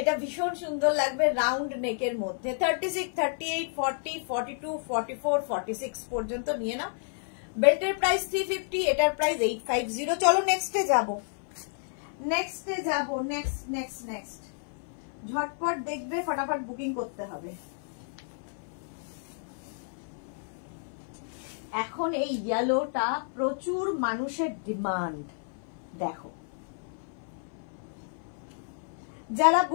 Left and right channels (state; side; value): silent; right; 57 dB below the other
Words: ভীষণ সুন্দর লাগবে রাউন্ড নেকের মধ্যে, 36, 38, 40, 42, 44, 46 পর্যন্ত নিয়ে নাও। বেল্টের প্রাইস 350, এটার প্রাইস 850। চলো নেক্সটে যাব, নেক্সট ঝটপট দেখবে, ফটাফট বুকিং করতে হবে। এখন এই ইয়েলোটা প্রচুর মানুষের ডিমান্ড। দেখো, যারা